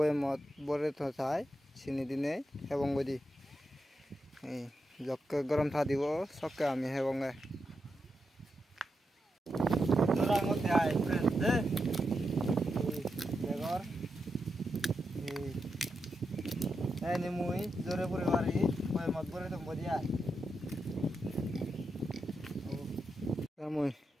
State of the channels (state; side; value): normal; both; correlation 0.86